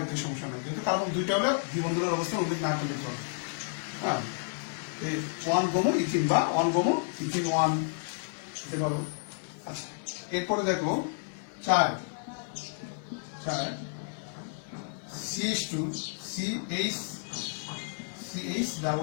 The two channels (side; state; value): right; silent; digital silence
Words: সমস্যা নেই, যেহেতু কার্বন দুইটা হলে দ্বিবন্ধনের অবস্থা উল্লেখ না করলে চলে। হ্যাঁ, 1 ব্রোমো ইথিন বা 1 ব্রোমো ইথিন 1 লিখতে পারো। আচ্ছা, এরপরে দেখো 4 CH2 CH